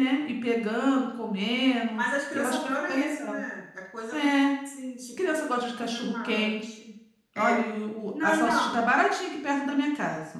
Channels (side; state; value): both; identical; correlation 1.00